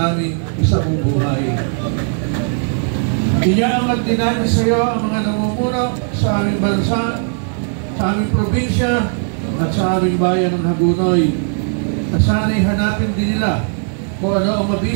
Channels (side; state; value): left; silent; 57 dB below the other